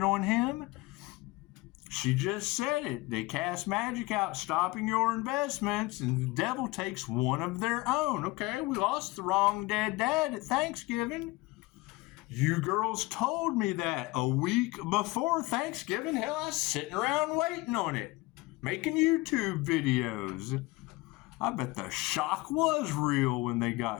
on him? She just said it. They cast magic out, stopping your investments, and the devil takes one of their own. Okay, we lost the wrong dead dad at Thanksgiving. You girls told me that a week before Thanksgiving. Hell, I was sitting around waiting on it, making YouTube videos. I bet the shock was real when they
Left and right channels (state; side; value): quieter; right; 21.5 dB